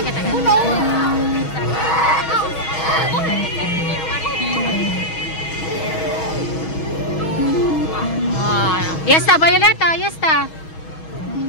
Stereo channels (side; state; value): right; late; 6.3 ms